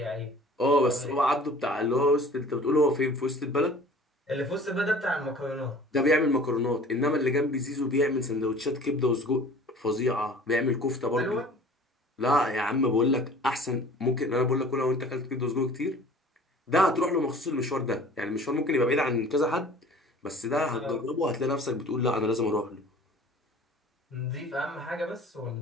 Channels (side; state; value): both; normal; correlation 0.46